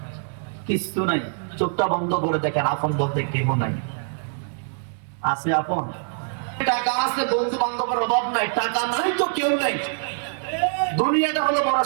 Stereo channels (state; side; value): silent; left; 60 dB below the other